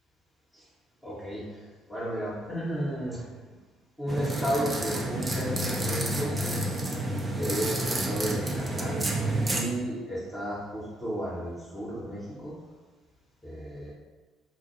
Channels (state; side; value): normal; both; correlation 0.76